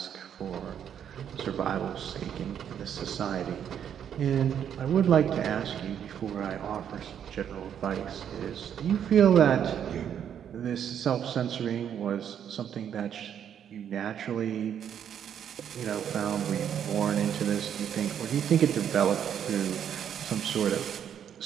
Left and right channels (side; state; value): left; quieter; 9.0 dB